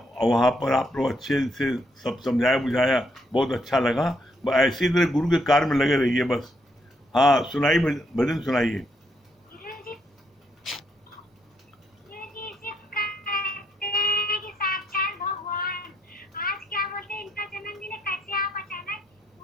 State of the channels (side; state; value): both; normal; correlation 0.74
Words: वहाँ पर आप लोग अच्छे से सब समझाया बुझाया, बहुत अच्छा लगा। बस ऐसी तरह गुरु के कार्य में लगे रहिए बस। हाँ सुनाइए, भजन सुनाइए। गुरुजी सिर्फ कहते हैं कि साक्षात भगवान। आज क्या बोलते हैं, इनका जन्मदिन है, कैसे आप अचानक